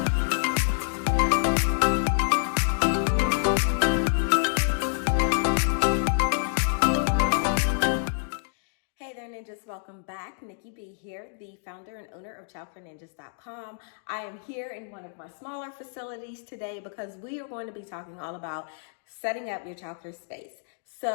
Ninjas, welcome back. Nikki B here, the founder and owner of ChildcareNinjas.com. I am here in one of my smaller facilities today because we are going to be talking all about setting up your childcare space.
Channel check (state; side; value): silent; right; digital silence